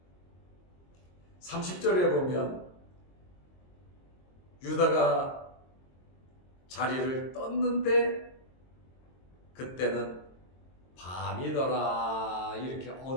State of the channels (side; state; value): right; late; 22 ms